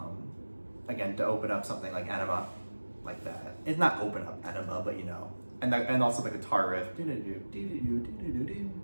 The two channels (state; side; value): inverted; both; correlation -1.00